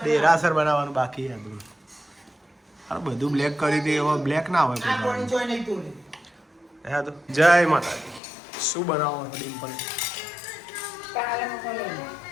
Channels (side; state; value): right; drops out; at 8.2 s